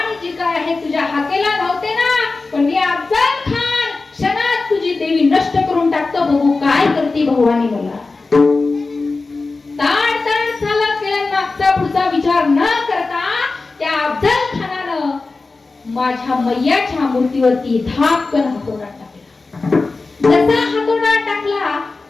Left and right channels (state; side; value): quieter; right; 3.7 dB